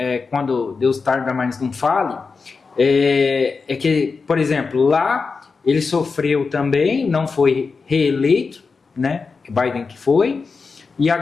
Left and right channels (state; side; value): quieter; right; 4.7 dB